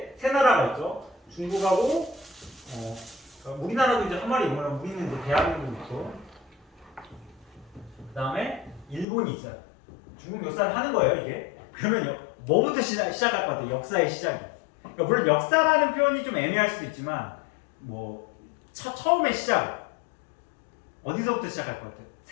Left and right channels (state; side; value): drops out; right; at 9.1 s